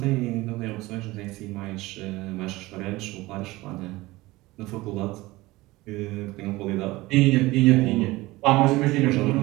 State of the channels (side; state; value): left; quieter; 19.8 dB